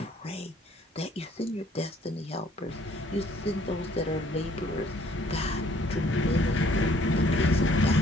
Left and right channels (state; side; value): normal; both; correlation 0.61